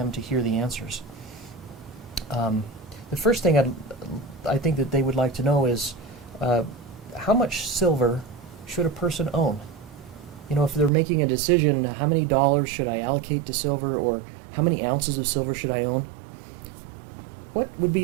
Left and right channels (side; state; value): left; drops out; at 10.9 s